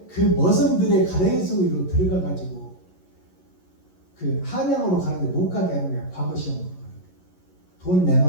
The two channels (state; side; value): late; right; 11 ms